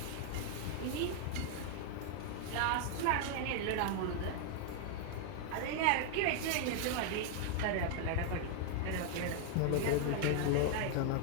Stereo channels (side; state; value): both; different; correlation 0.00